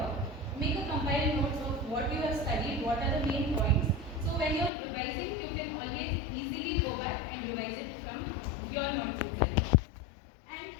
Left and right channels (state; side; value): drops out; right; at 4.7 s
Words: Make a compiled notes of what you have studied, what are the main points. So when you're revising, you can always easily go back and revise it from your notes itself. And